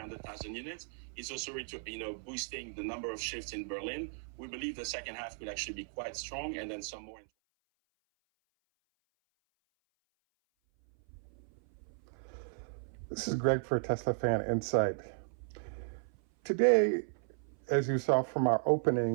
units. It's also boosting the number of shifts in Berlin. We believe the second half will actually be quite strong, and then some more. This is Greg for Teslafaninsight. Today, as you saw from our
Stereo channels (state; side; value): silent; left; 54 dB below the other